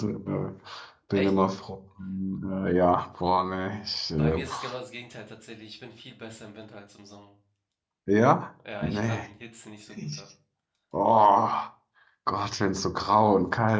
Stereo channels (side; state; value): both; identical; correlation 1.00